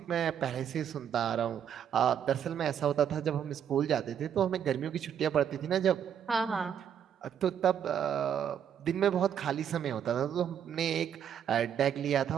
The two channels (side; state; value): left; quieter; 8.8 dB